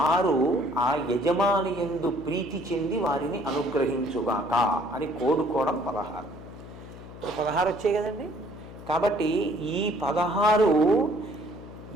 ఆ యజమాని యందు ప్రీతి చెంది వారిని అనుగ్రహించుగాక అని కోడుకోవడం 16. 16 వచ్చాయి కదండి. కాబట్టి ఈ 16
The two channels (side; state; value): left; noise; hum, 15 dB below the sound